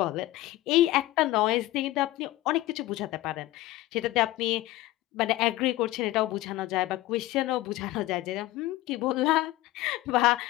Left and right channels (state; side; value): quieter; right; 16.9 dB